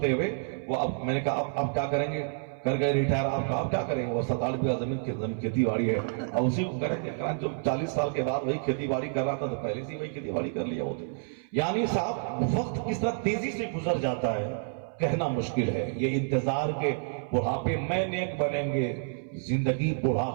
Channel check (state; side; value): silent; left; 59 dB below the other